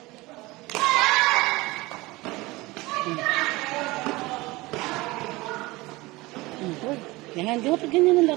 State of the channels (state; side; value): quieter; left; 21.3 dB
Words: Uy, yan. Di ba pag ganyan ang